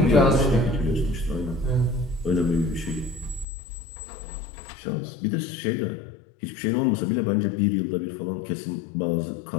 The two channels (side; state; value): right; drops out; at 3.5 s